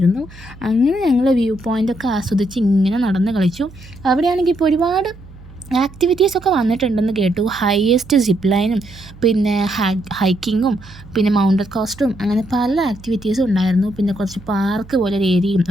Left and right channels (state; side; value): noise; right; hum, 20 dB below the sound